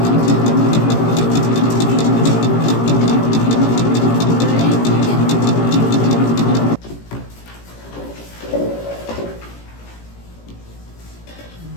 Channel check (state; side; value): late; right; 18 ms